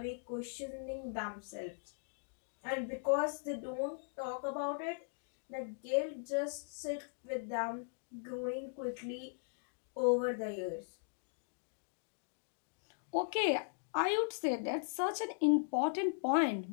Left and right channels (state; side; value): silent; right; digital silence